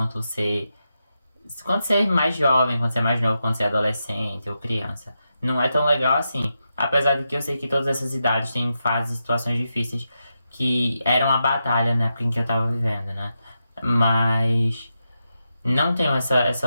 você é mais jovem, quando você é mais novo, quando você é adolescente ou criança. Não é tão legal assim. Apesar de que eu sei que todas essas idades têm fases e situações difíceis que eram a batalha na época em que eu tava vivendo, né? Mas não tenho essa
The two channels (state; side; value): inverted; both; correlation -0.87